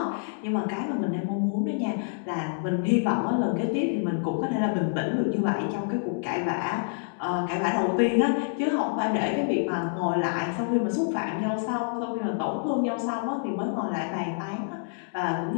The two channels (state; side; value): silent; right; digital silence